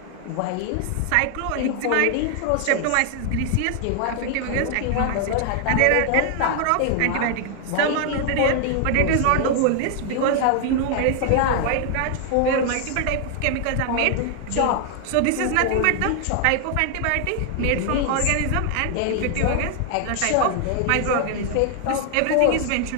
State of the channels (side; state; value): both; different; correlation 0.00